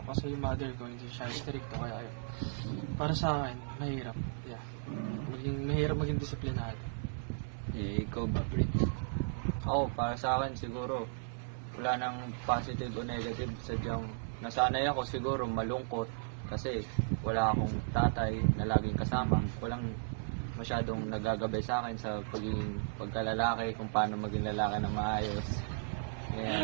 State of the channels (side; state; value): left; silent; 54 dB below the other